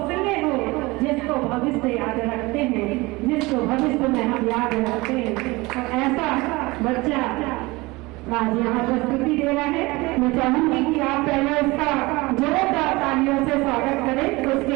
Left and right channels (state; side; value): quieter; left; 22.6 dB